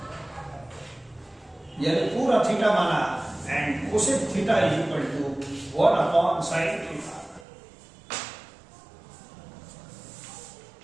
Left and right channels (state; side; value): drops out; left; at 7.5 s